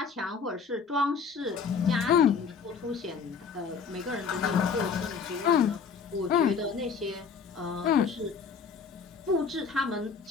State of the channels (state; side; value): quieter; right; 5.8 dB